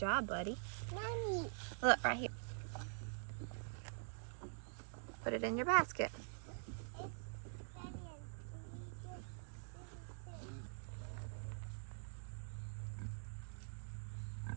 buddy. Mommy. Look, right here. Put it in your basket.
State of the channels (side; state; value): left; silent; digital silence